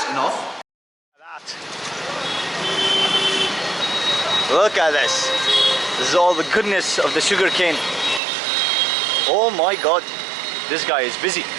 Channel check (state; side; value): drops out; left; at 8.2 s